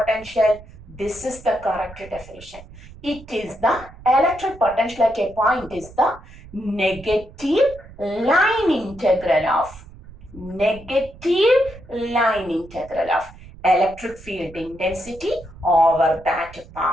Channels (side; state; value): right; noise; rumble, 19 dB below the sound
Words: This is the correct definition. It is the electric potential at a point is the negative line integral of electric field intensity over that